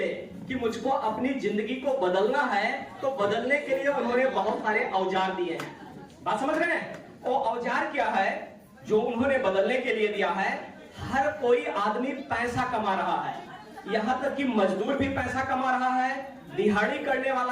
कि मुझको अपनी जिंदगी को बदलना है तो बदलने के लिए उन्होंने बहुत सारे औजार दिए हैं। बात समझ रहे हैं? वो औजार क्या है जो उन्होंने बदलने के लिए दिया है? हर कोई आदमी पैसा कमा रहा है, यहां तक कि मजदूर भी पैसा कमा रहा है, दिहाड़ी करने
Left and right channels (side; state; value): both; identical; correlation 1.00